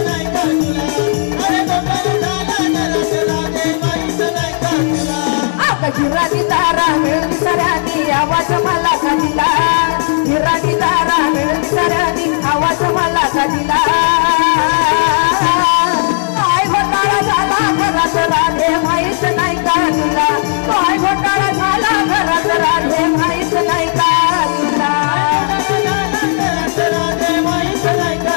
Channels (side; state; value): right; silent; digital silence